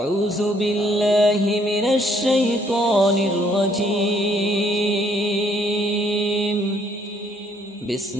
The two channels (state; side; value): normal; both; correlation 0.66